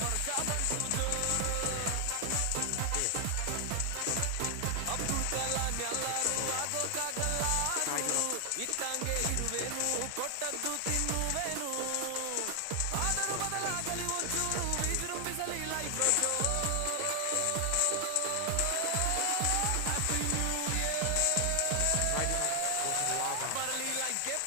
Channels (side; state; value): both; different; correlation 0.00